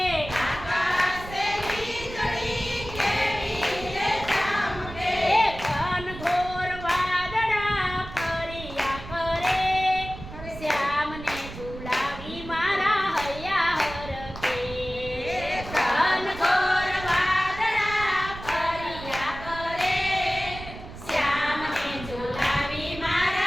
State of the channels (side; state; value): right; noise; rumble, 12 dB below the sound